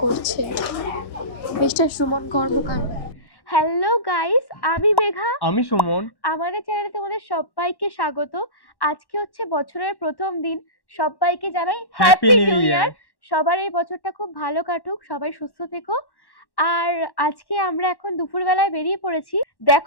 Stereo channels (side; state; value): right; late; 1.1 ms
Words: করছে মিস্টার সুমন কর্মকার। হ্যালো গাইস, আমি মেঘা, আমি সুমন। আমাদের চ্যানেলে তোমাদের সবাইকে স্বাগত। আজকে হচ্ছে বছরের প্রথম দিন, সবাইকে জানাই হ্যাপি নিউ ইয়ার। সবার এই বছরটা খুব ভালো কাটুক, সবাই সুস্থ থেকো। আর আজকে আমরা এখন দুপুরবেলায় বেরিয়ে পড়েছি।